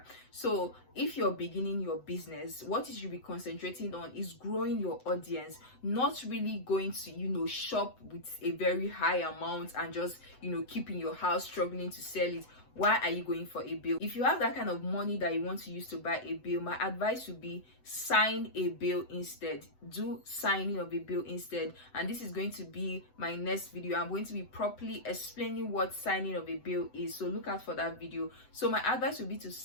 So if you're beginning your business, what you should be concentrating on is growing your audience, not really going to shop with a very high amount and just keeping your house struggling to sell it. Why are you going for a bill? If you have that kind of money that you want to use to buy a bill, my advice would be sign a bill instead. Do signing of a bill instead. And this is going to be my next video. I'm going to be properly explaining what signing of a bill is, so look out for that video. So my advice would be to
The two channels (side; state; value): right; late; 7.9 ms